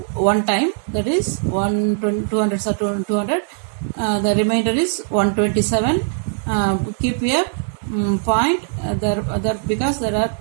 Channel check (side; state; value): left; silent; 66 dB below the other